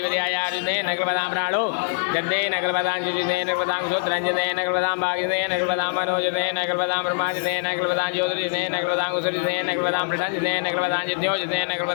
नगरपदां प्राणो गद्दे नगरपदां जुजिदे नगरपदां सुत्रंजदे नगरपदां भागिदे नगरपदां मनोजदे नगरपदां ब्रह्माजिदे नगरपदां ज्योतिर्जिदे नगरपदां कुसुरिदे नगरपदां प्रसंजिदे नगरपदां जित्योजिदे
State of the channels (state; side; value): silent; right; digital silence